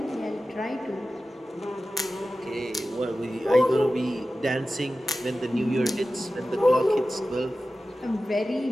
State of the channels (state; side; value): normal; both; correlation 0.95